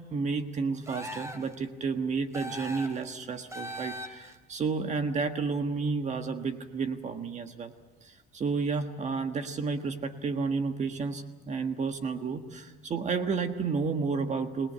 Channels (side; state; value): left; quieter; 4.2 dB